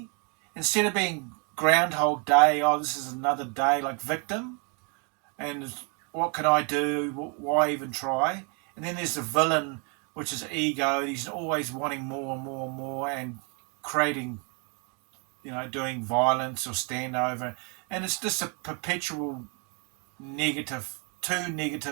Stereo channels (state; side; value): quieter; left; 35.9 dB